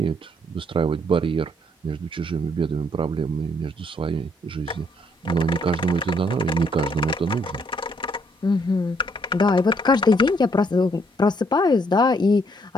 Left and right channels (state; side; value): normal; both; correlation 0.69